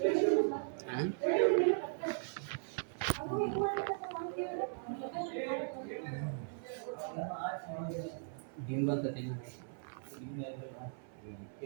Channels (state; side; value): silent; left; 52 dB below the other